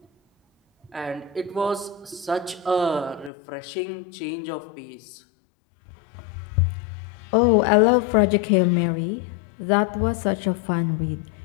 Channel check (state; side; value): drops out; right; at 3.3 s